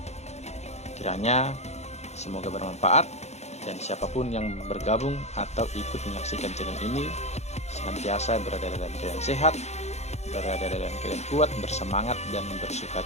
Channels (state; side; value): late; right; 0.32 ms